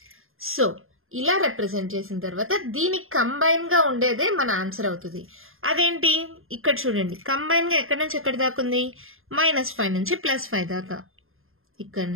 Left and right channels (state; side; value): late; left; 0.60 ms